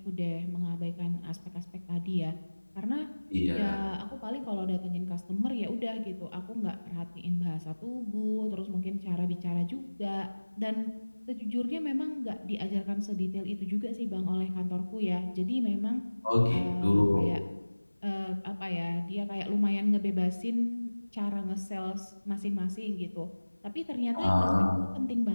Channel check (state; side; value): inverted; both; correlation -1.00